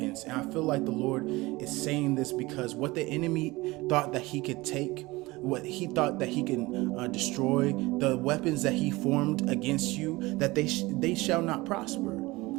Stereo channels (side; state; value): left; quieter; 21.4 dB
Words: And I feel like the Lord is saying this because what the enemy thought that he could take, what he thought that he can destroy, the weapons that he formed against you, that they shall not prosper.